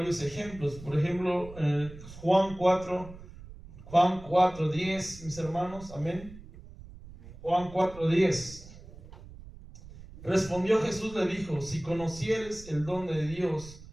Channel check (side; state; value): right; noise; rumble, 17 dB below the sound